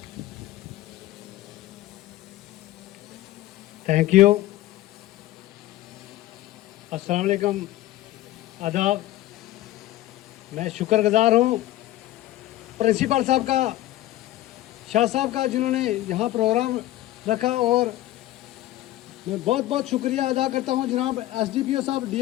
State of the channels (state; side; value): quieter; right; 15.2 dB